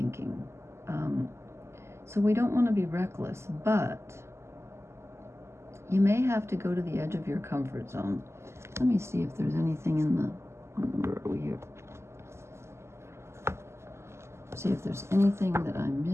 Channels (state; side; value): late; left; 0.13 ms